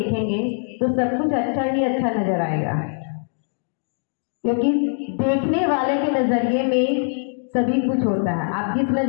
तो सब कुछ अच्छा ही अच्छा नजर आएगा, क्योंकि देखने वाले के नज़रिए में सभी कुछ होता है। आप जिस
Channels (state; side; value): silent; right; digital silence